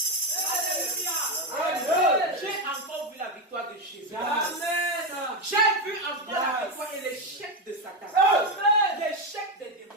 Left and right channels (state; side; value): normal; both; correlation 0.10